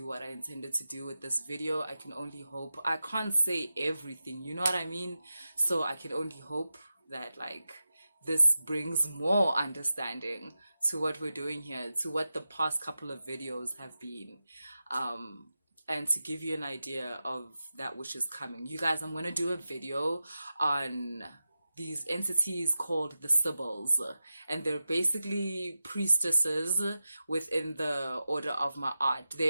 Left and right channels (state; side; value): inverted; both; correlation -0.93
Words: what I intended to do with this video. I can only hope. I can't say everything, you know what I mean? So I can only hope that, like, this brings more understanding to what we're doing here, to what the past couple of videos have been, and to give you an idea of that which is coming. You guys, I'm going to do a video on these entities called the Sibyls, and they're basically priestesses within the order of Ma'at.